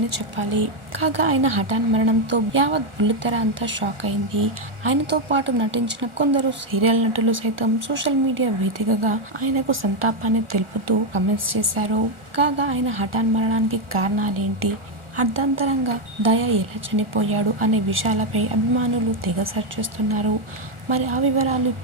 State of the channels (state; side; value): late; left; 1.4 ms